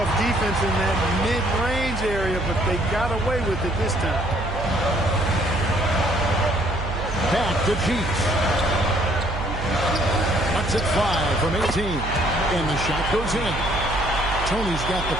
defense in that mid-range area, but they got away with it this time. Back to Cheeks. Cuts it 5 from 18. And the shot goes in. Tony's got the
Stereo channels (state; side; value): noise; right; hum, 6 dB below the sound